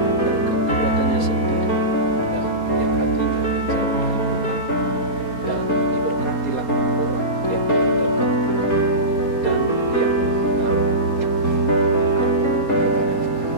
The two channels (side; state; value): right; late; 4.2 ms